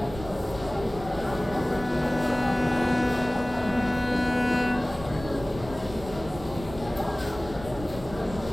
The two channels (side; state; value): right; noise; rumble, 14 dB below the sound